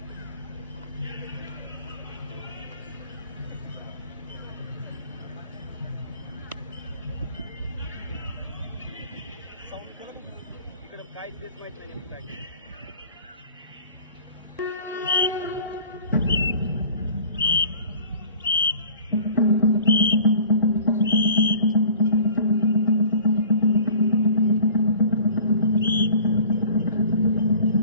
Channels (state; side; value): inverted; both; correlation -0.46